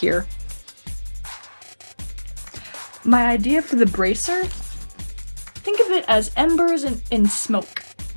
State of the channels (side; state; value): both; inverted; correlation -1.00